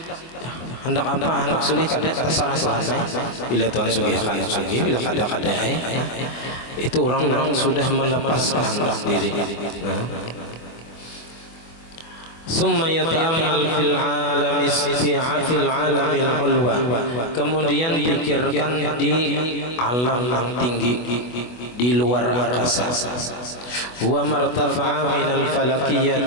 Hendak apa, hendak sugih kada terserah Tuhan. Bila Tuhan sugihkan sugih, bila kada itu orang-orang sudah melepas kehendak diri. Summa yata'ammal fil alamil ulwa, kemudian pikirkan di alam yang tinggi, di luar angkasa. Wa martafa'a minal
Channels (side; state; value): right; late; 24 ms